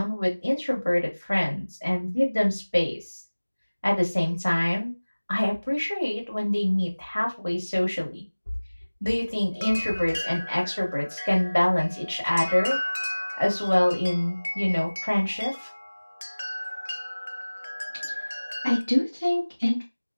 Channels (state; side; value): inverted; both; correlation -1.00